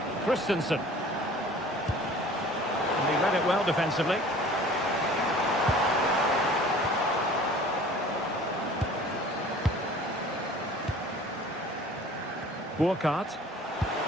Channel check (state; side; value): normal; both; correlation 0.47